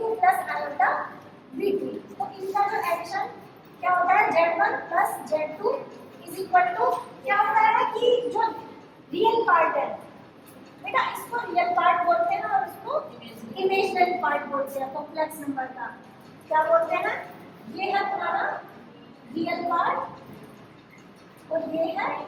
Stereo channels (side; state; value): both; identical; correlation 1.00